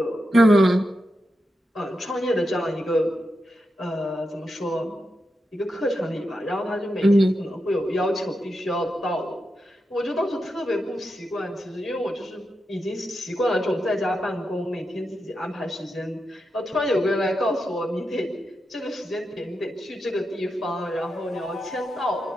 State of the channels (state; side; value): normal; both; correlation 0.87